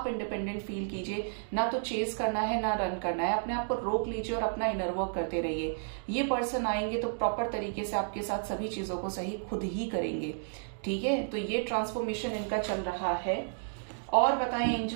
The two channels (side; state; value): left; silent; digital silence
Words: इंडिपेंडेंट फील कीजिए। ना तो चेस करना है ना रन करना है, अपने आप को रोक लीजिए और अपना इनर वर्क करते रहिए। ये पर्सन आएंगे तो प्रॉपर तरीके से आपके साथ सभी चीजों को सही खुद ही करेंगे। ठीक है, तो ये ट्रांसफॉर्मेशन इनका चल रहा है। और बताएं